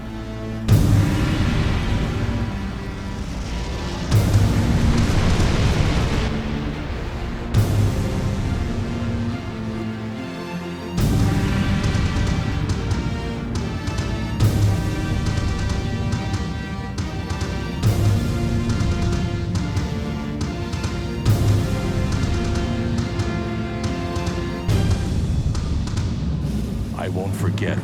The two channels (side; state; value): both; identical; correlation 1.00